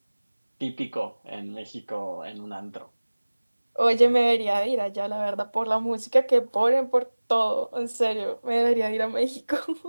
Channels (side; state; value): both; inverted; correlation -1.00